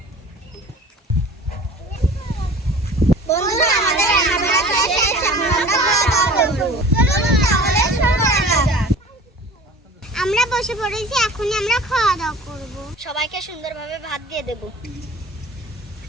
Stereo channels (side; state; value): both; normal; correlation 0.43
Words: বন্ধুরা, আমাদের রান্না বান্না শেষ, এখন আমরা খাওয়া দাওয়া করব। চলুন তাহলে শুরু করা যাক। আমরা বসে পড়েছি, এখনই আমরা খাওয়া দাওয়া করব। সবাইকে সুন্দরভাবে ভাত দিয়ে দেব।